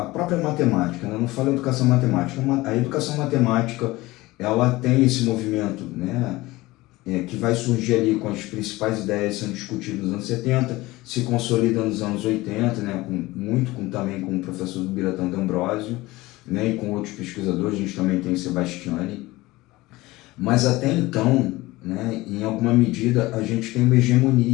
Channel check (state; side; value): quieter; right; 19.7 dB